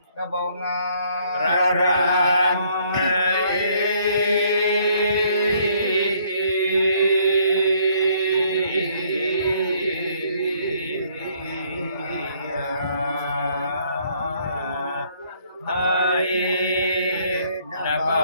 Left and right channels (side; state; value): both; inverted; correlation -0.65